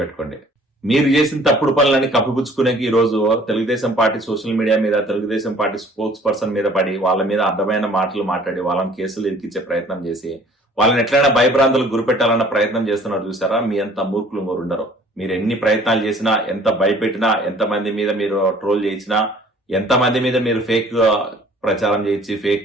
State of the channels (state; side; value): normal; both; correlation 0.54